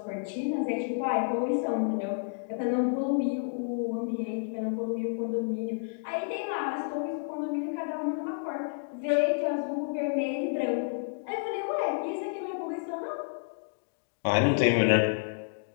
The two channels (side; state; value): right; silent; digital silence